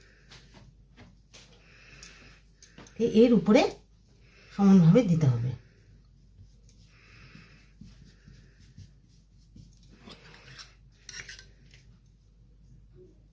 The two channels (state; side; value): identical; both; correlation 1.00